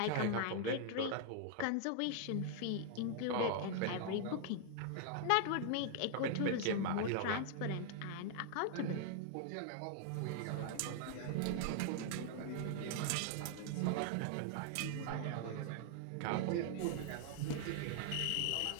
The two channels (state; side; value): different; both; correlation 0.00